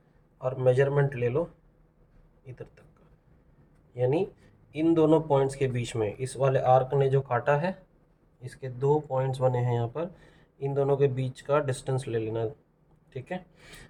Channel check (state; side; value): identical; both; correlation 1.00